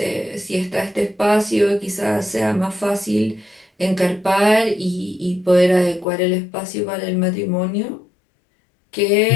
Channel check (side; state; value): right; drops out; at 6.1 s